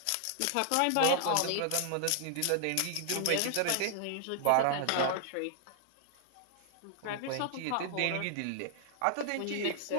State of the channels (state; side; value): different; both; correlation -0.01